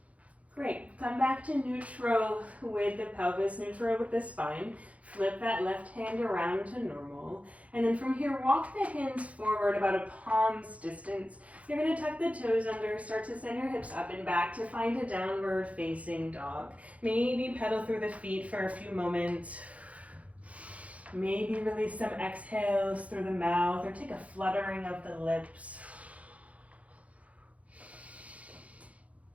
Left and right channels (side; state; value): left; late; 0.066 ms